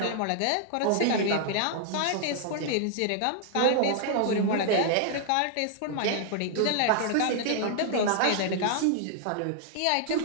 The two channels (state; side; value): different; both; correlation -0.01